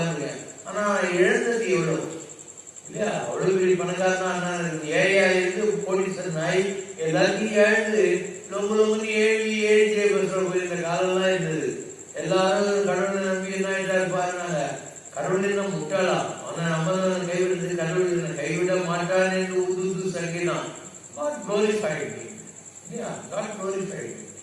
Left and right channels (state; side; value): identical; both; correlation 1.00